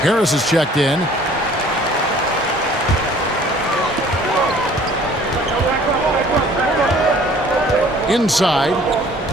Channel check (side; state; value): both; normal; correlation 0.53